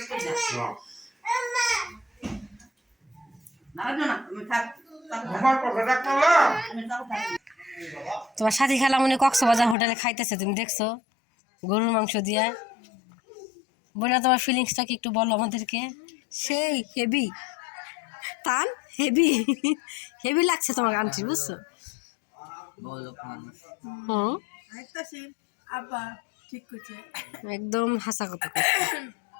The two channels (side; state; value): right; drops out; at 9.8 s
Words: তোমার সাথী খেলা মনে কক্সবাজার হোটেলে খাইতেছে, তুমি দেখছো গরুর মাংস দিয়া। বোনা তোমার ফিলিংসটা কি একটু বলো আমাদেরকে। সেই হেভি টান, হেভি হেভি লাগছে তোমার আন্টি, বুঝছো? হুম, একদম হাসা কথা।